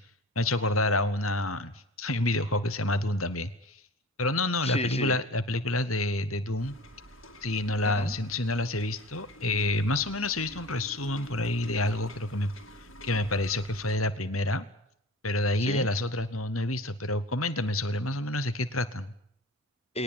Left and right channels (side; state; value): both; normal; correlation 0.39